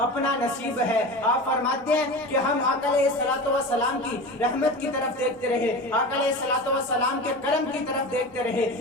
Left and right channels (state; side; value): normal; both; correlation 0.30